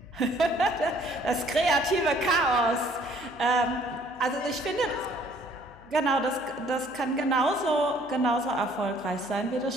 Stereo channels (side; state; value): left; noise; hum, 27 dB below the sound